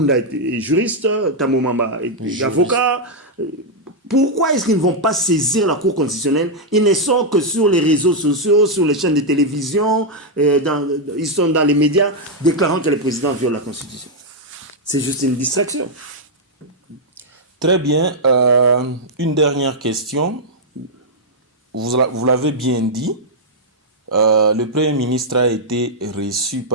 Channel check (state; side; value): normal; both; correlation -0.04